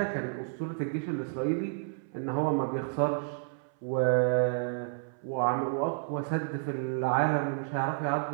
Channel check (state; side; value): silent; left; 57 dB below the other